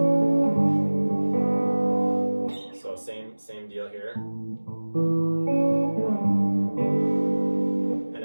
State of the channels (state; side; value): inverted; both; correlation -1.00